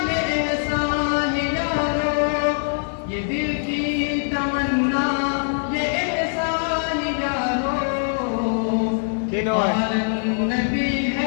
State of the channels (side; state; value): right; silent; digital silence